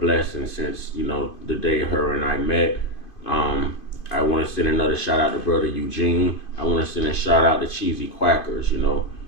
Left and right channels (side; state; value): right; late; 2.5 ms